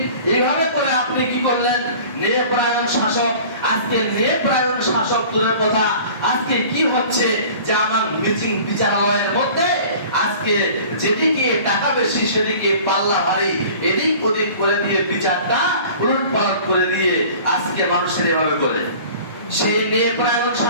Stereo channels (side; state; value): both; inverted; correlation -0.45